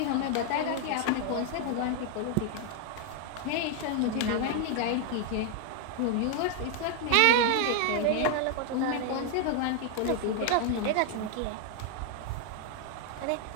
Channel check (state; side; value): different; both; correlation 0.00